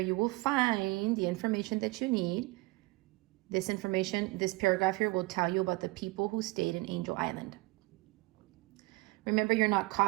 will find the information that you need. This information, this paragraph here will tell you about the people who stayed in Angel Island. Remember, you're not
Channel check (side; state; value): left; quieter; 23.4 dB